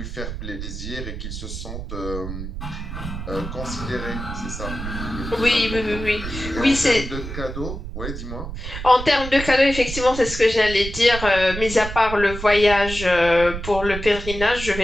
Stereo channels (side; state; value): right; noise; rumble, 8 dB below the sound